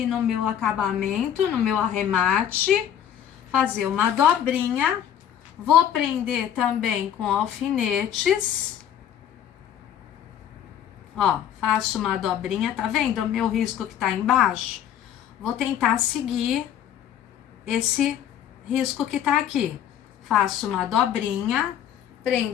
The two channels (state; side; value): quieter; right; 9.9 dB